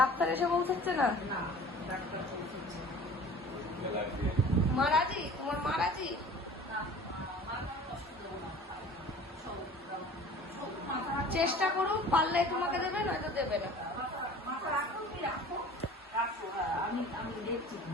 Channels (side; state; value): both; normal; correlation 0.44